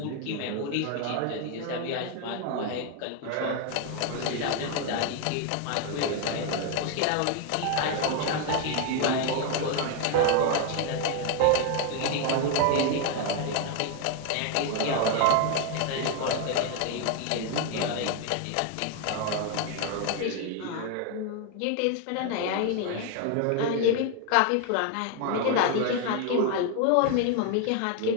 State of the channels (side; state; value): both; different; correlation 0.01